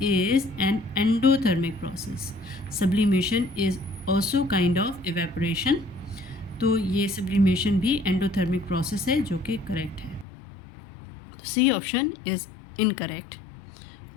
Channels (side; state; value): right; drops out; at 10.2 s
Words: is an endothermic process. Sublimation is also kind of evaporation. तो ये सब्लिमेशन भी एंडोथर्मिक प्रोसेस है, जो कि करेक्ट है। तो C option is incorrect